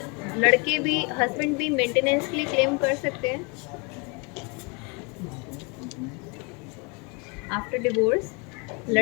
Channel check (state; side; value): quieter; right; 31.3 dB